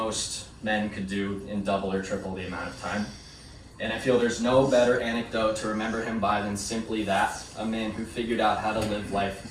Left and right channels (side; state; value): both; identical; correlation 1.00